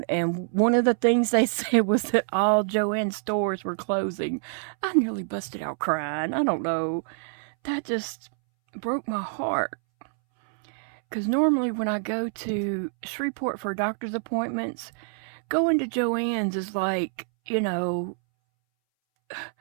and one of the things they said was that all Joann stores were closing. I nearly busted out crying. I don't know. That just broke my heart. Because normally when I go to Shreveport for doctor's appointments, going to Joann's is like,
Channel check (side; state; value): left; silent; 61 dB below the other